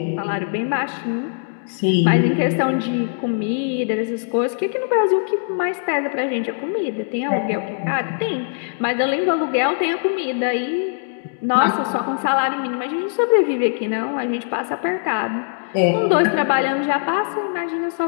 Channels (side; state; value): right; silent; digital silence